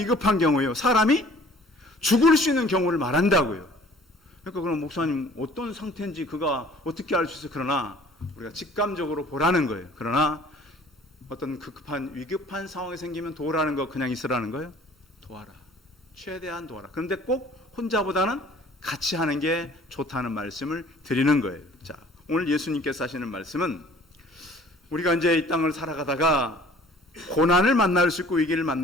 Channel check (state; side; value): normal; both; correlation 0.52